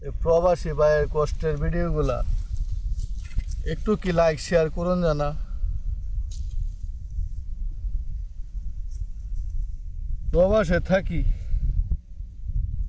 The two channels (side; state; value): both; identical; correlation 1.00